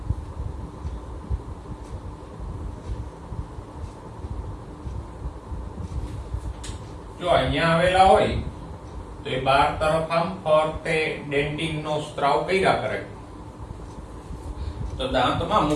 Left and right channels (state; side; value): identical; both; correlation 1.00